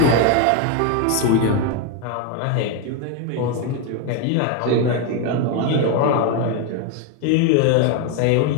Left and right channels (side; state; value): both; different; correlation 0.02